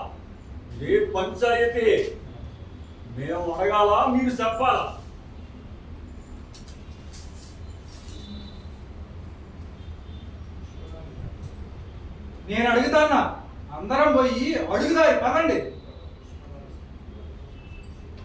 ఏ పంచాయతీ మేము అడగాల మీరు చెప్పాలా? నేను అడుగుతానా, అందరం పోయి అడుగుదారి పదండి.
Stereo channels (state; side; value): identical; both; correlation 1.00